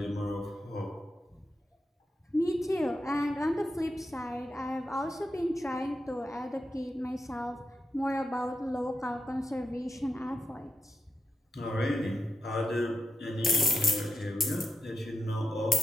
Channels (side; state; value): both; normal; correlation 0.87